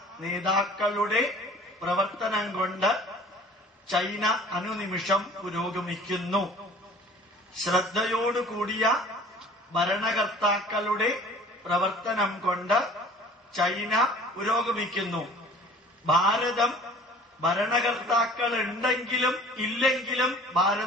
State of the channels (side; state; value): both; normal; correlation 0.48